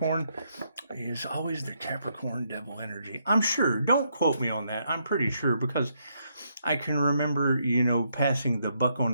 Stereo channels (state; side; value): inverted; both; correlation -0.76